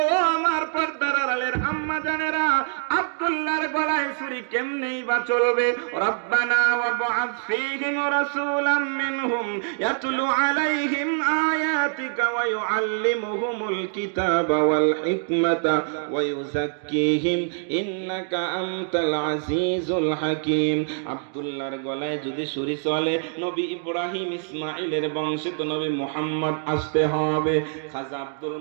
আমার পর্দার আড়ালের আম্মা জানেরা, আব্দুল্লাহর গলায় ছুরি কেমনেই বা চলবে? রব্বানা ওয়াবআথ ফীহিম রাসূলাম মিনহুম ইয়াতলু আলাইহিম আয়াতিকা ওয়া ইউআল্লিমুহুমুল কিতাবা ওয়াল হিকমাতা ওয়া ইউযাক্কিহিম ইন্নাকা আনতাল আজিজুল হাকীম। আব্দুল্লাহর গলায় যদি ছুরি চলে, নবী ইব্রাহিম ইসমাঈলের বংশে তো নবী মুহাম্মদ আসতে হবে। খাজা আব্দুল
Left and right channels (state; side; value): silent; left; digital silence